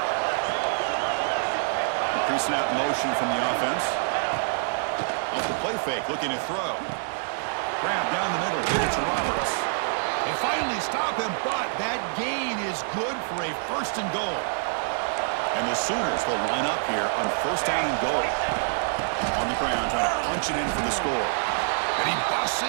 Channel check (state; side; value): silent; left; 61 dB below the other